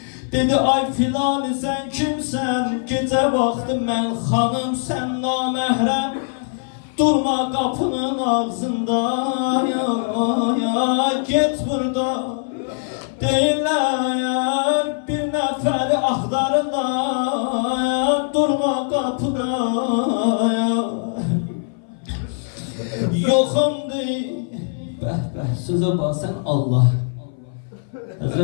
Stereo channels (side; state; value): right; silent; 59 dB below the other